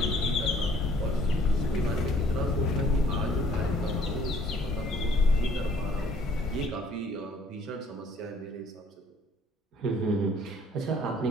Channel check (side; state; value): both; normal; correlation 0.59